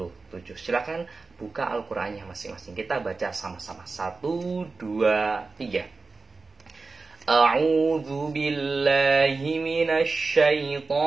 Silakan buka Al-Qur'annya masing-masing. Kita baca sama-sama. 1 2 3. A'udzu billahi minasy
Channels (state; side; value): quieter; left; 3.9 dB